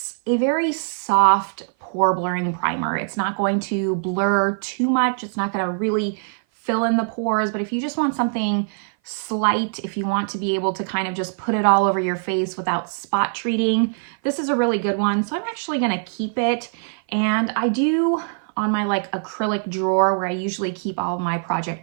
a very soft pore blurring primer. It's not going to blur too much. It's not going to really fill in the pores, but if you just want something slight, if you want to be able to kind of just put it all over your face without spot treating, this is a really good one. So I'm actually going to keep it, and I do on my like acrylic drawer where I usually keep all of my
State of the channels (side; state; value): left; silent; 57 dB below the other